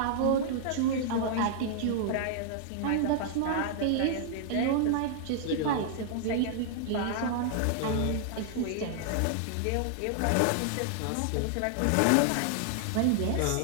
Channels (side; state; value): both; different; correlation -0.01